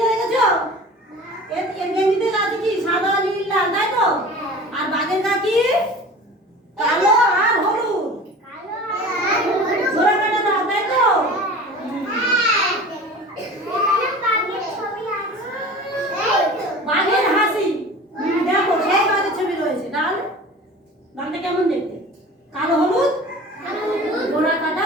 দেখেছো? এর গেঞ্জিতে আছে কি সাদা নীল লাল, তাই তো? আর বাঘের গা কি কালো আর হলুদ। ঘোড়া কাটা দাও, তাই তো? বাঘের হাসি দেখো, সেই বাঘের ছবি রয়েছে। ডাল ডালটা কেমন দেখতে? কালো হলুদ, ঘোড়া কাটা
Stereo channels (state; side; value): normal; both; correlation 0.39